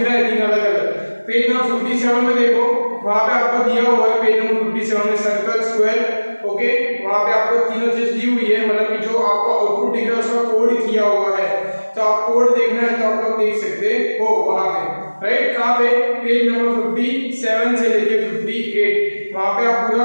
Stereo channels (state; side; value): inverted; both; correlation -1.00